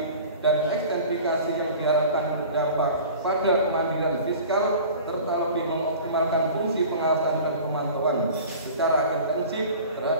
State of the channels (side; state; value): both; inverted; correlation -0.41